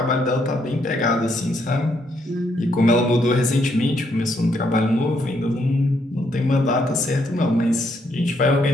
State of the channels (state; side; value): normal; both; correlation 0.74